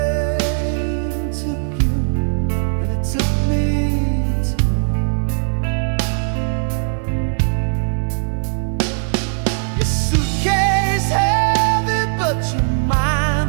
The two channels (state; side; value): silent; left; digital silence